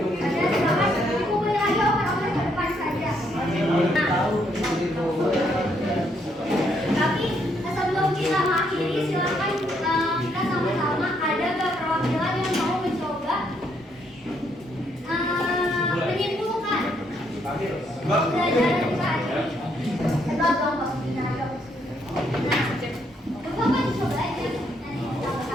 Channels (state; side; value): normal; both; correlation 0.73